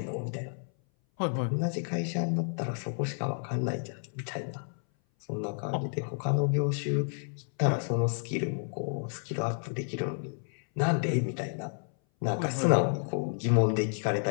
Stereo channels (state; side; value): silent; right; 57 dB below the other